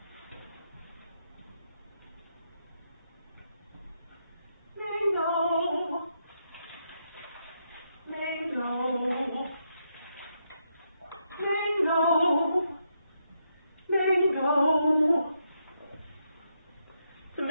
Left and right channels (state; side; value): inverted; both; correlation -0.80